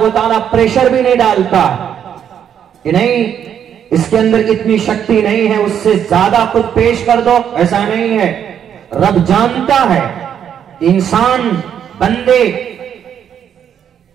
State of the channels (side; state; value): left; quieter; 8.8 dB